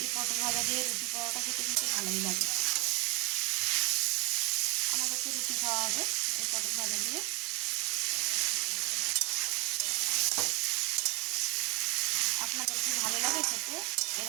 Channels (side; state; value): left; quieter; 28.6 dB